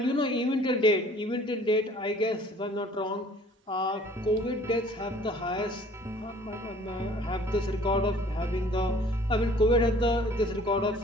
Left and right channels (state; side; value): normal; both; correlation 0.53